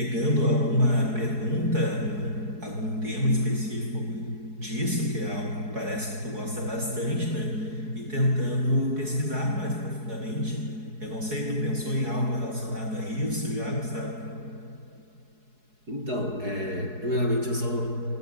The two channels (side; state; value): left; late; 4.7 ms